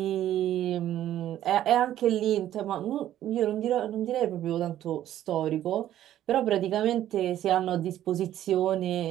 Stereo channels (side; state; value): left; quieter; 12.3 dB